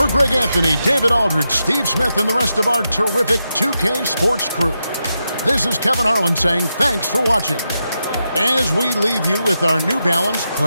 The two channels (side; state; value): both; inverted; correlation -0.86